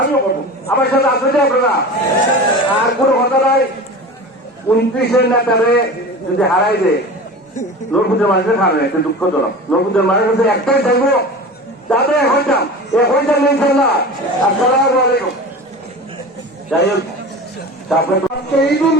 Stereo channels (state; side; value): normal; both; correlation 0.33